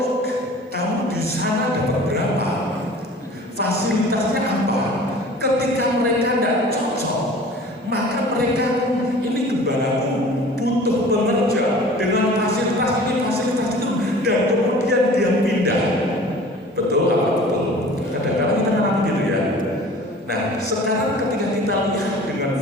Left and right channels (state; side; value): normal; both; correlation 0.44